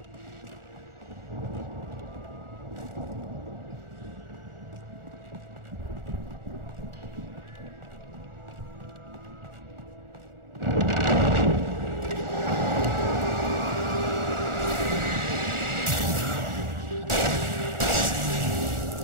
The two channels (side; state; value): left; late; 1.4 ms